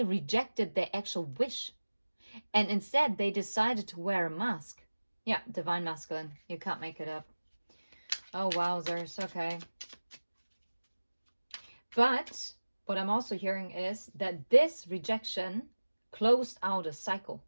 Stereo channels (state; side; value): inverted; both; correlation -1.00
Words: rejected their actual wish, and instead they decided to wear a mask. Yeah, divine masculine. You can't make it up. Oh, wowzers. Okay. But what I'm also hearing is that this rejection closed out a cycle.